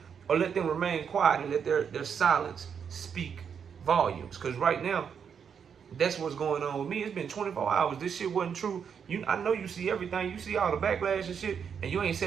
Or let them remain quiet and let their silence speak volumes. Because right now, That's what's going on with me. It's been 24 hours. This shit wasn't true. I know you see everything. You see all the backlash and shit, and you ain't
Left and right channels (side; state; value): left; quieter; 7.2 dB